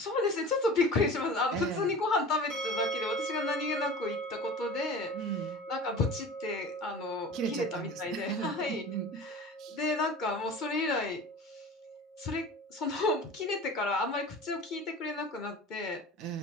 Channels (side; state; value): both; normal; correlation 0.38